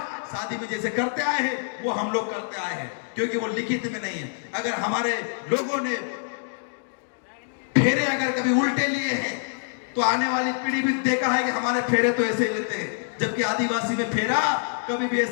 शादी में जैसे करते आए हैं वो हम लोग करते आए हैं, क्योंकि वो लिखित में नहीं है। अगर हमारे लोगों ने फेरे अगर कभी उल्टे लिए हैं तो आने वाली पीढ़ी भी देखा है कि हमारे फेरे तो ऐसे ही लेते हैं, जबकि आदिवासी में फेरा कभी भी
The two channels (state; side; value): silent; right; digital silence